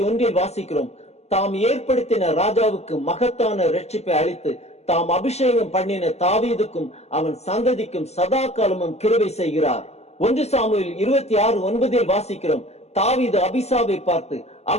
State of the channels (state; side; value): late; right; 0.31 ms